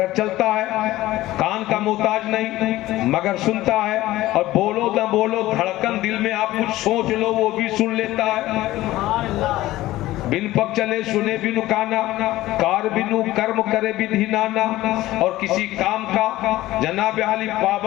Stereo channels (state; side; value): quieter; right; 16.4 dB